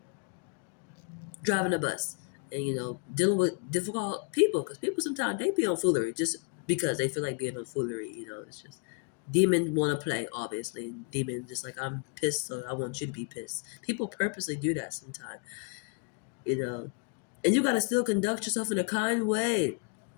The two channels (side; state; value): right; quieter; 38.6 dB